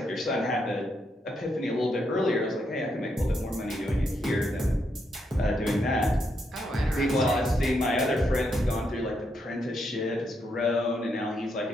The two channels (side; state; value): both; normal; correlation 0.79